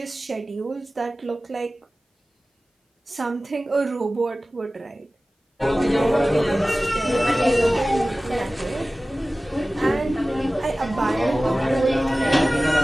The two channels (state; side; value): normal; both; correlation 0.97